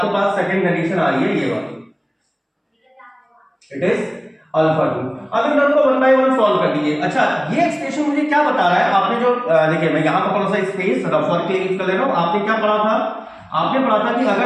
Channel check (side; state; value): both; identical; correlation 1.00